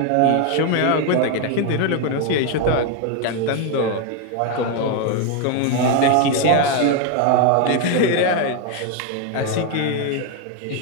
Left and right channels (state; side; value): different; both; correlation 0.01